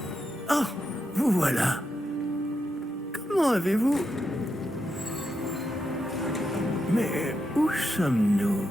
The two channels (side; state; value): both; normal; correlation 0.85